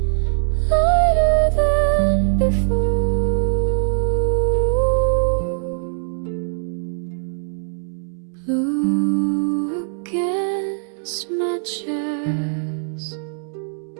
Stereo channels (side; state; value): left; silent; 65 dB below the other